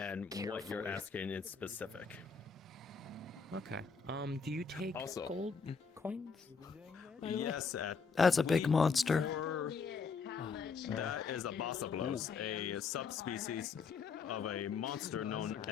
what you're asking in specific. Okay. Do you take Also- gold coins? by the way? Yes, That's a big monster. That is a Bossablos, a subspecies of a monster known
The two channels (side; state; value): right; quieter; 5.4 dB